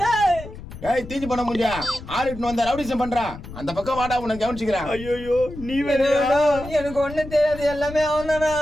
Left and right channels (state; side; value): noise; left; rumble, 13 dB below the sound